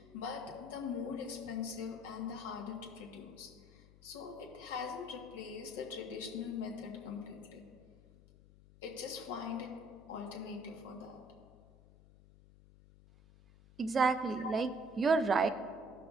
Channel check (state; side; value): noise; left; hum, 22 dB below the sound